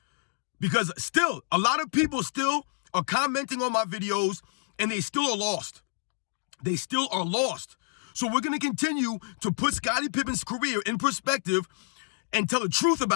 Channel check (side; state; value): right; silent; digital silence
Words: Because still, a lot of people still are commenting on my videos, and they still are lost. They still are lost. So we're going to continue to put Scottie Pippen's career in perspective and tell the truth